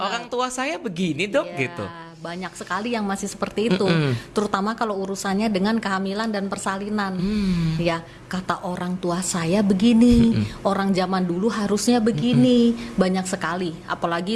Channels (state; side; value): identical; both; correlation 1.00